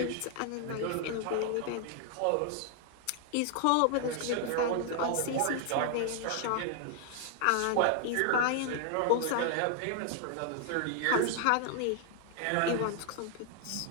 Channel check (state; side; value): different; both; correlation 0.00